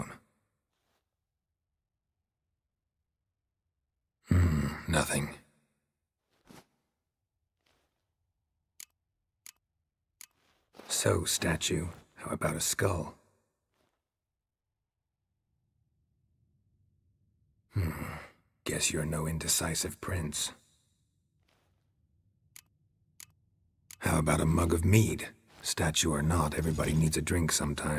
Nothing. So, statue, how about a skull? Guess you're no indecisive prince. How about a mug of mead? Statue or not, everybody needs a drink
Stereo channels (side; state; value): both; identical; correlation 1.00